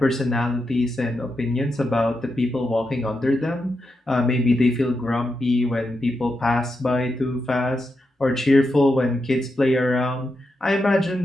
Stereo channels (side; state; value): both; normal; correlation 0.86